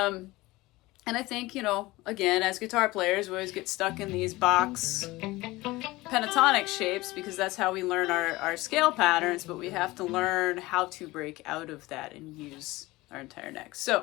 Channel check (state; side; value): quieter; right; 20.1 dB